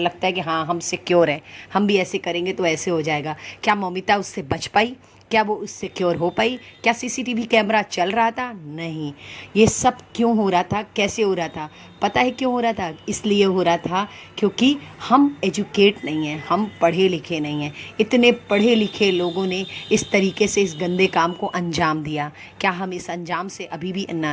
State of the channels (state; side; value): identical; both; correlation 1.00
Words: है कि हाँ, हम सिक्योर हैं, हम भी ऐसे करेंगे तो ऐसे हो जाएगा। क्या ममिता उससे बच पाई? क्या वो उससे सिक्योर हो पाई? क्या सीसीटीवी कैमरा चल रहा था? नहीं। ये सब क्यों हो रहा था, कैसे हो रहा था? पता है क्यों हो रहा था? इसलिए हो रहा था क्योंकि हम एजुकेट नहीं हैं, हम पढ़े लिखे नहीं हैं। इतने पढ़े लिखे लोगों ने इस तरीके से इस गंदे काम को अंजाम दिया। क्या हम इस अंजाम से अभी भी